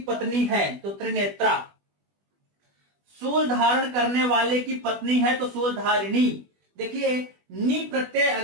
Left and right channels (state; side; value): late; left; 20 ms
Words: पत्नी है तो त्रिनेत्रा। शूल धारण करने वाले की पत्नी है तो शूलधारिणी। देखिए, नी प्रत्यय